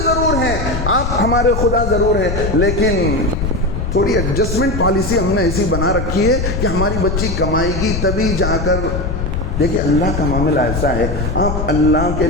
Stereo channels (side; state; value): left; noise; rumble, 3 dB below the sound